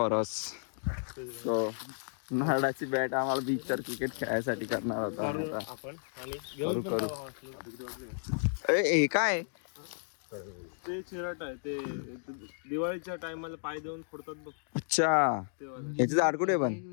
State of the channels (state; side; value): silent; right; digital silence